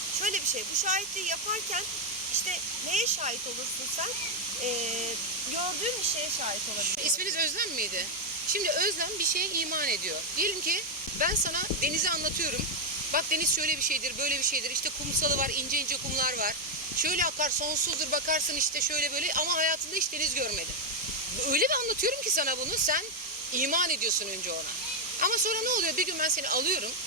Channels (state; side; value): normal; both; correlation 0.01